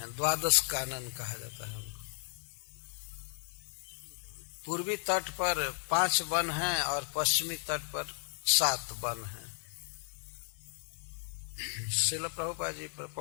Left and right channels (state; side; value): silent; right; 55 dB below the other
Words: 12 कानन कहा जाता है उनको। पूर्वी तट पर 5 वन हैं और पश्चिमी तट पर 7 वन हैं। श्रील प्रभुपाद जी